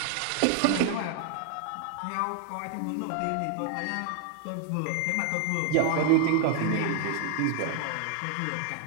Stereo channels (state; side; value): different; both; correlation 0.00